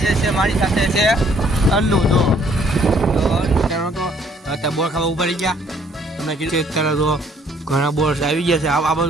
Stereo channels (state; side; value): normal; both; correlation 0.63